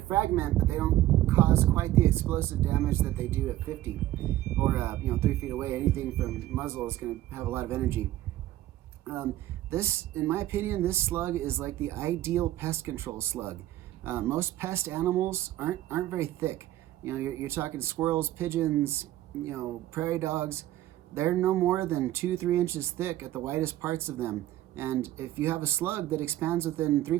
but they don't cause quite the explosive damage that they do at 50 or you know, 3 feet away. Anything from muzzle is going to have a lot of energy. This, in my opinion, this slug is like the ideal pest control slug. Most pest animals aren't very thick. You know, you're talking squirrels, pigeons, you know, prairie dogs. They're no more than 2-3 inches thick at the widest parts of them. And if you have a slug that expands within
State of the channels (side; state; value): left; quieter; 14.6 dB